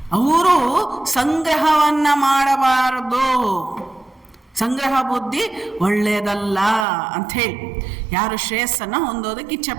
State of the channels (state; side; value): drops out; left; at 6.9 s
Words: ಅವರು ಸಂಗ್ರಹವನ್ನು ಮಾಡಬಾರದು. ಸಂಗ್ರಹ ಬುದ್ಧಿ ಒಳ್ಳೆಯದಲ್ಲ ಅಂಥೇಳಿ ಯಾರು ಶ್ರೇಯಸ್ಸನ್ನು ಹೊಂದೋದಕ್ಕೆ ಇಚ್ಛೆ